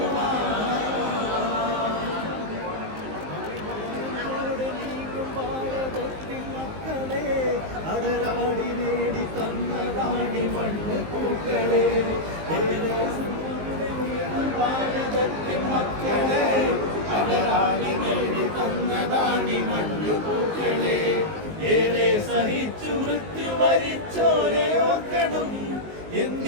അടരാടി നേടി തന്നതാണി മണ്ണ് പൂക്കളെ, ഭാരതത്തിൻ മക്കളെ. അടരാടി നേടി തന്നതാണി മണ്ണ് പൂക്കളെ. ഏറെ സഹിച്ചു മൃത്യു വരിച്ചോരെ ഓർക്കണം.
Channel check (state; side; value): late; left; 19 ms